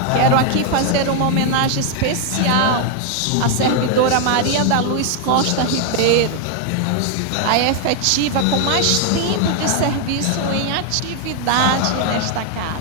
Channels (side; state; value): both; different; correlation 0.00